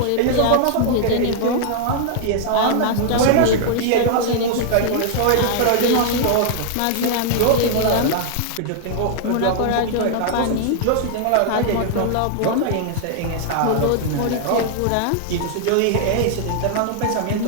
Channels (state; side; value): different; both; correlation -0.01